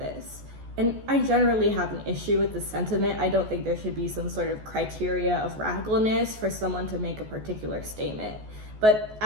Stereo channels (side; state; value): left; late; 14 ms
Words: And I generally have an issue with the sentiment. I don't think there should be some sort of criteria of radicalness for someone to make a particular statement. But